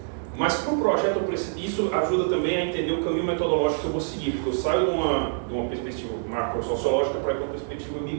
Mas para o projeto, isso ajuda também a entender o caminho metodológico que eu vou seguir, porque eu saio de uma perspectiva macro-sociológica para ir para uma perspectiva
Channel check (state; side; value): silent; left; digital silence